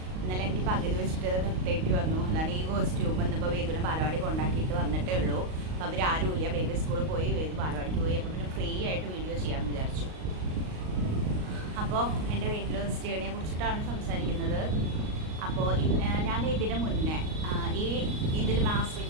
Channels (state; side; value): late; left; 38 ms